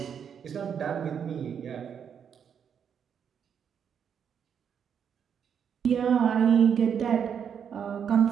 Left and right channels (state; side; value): quieter; left; 7.8 dB